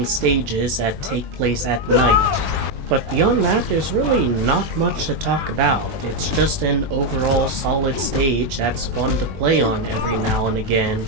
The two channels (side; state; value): left; late; 21 ms